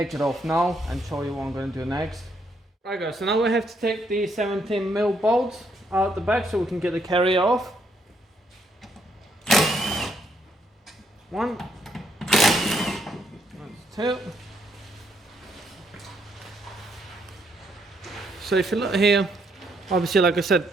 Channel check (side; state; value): both; normal; correlation 0.73